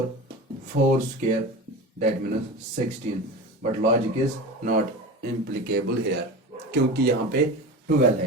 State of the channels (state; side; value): normal; both; correlation 0.30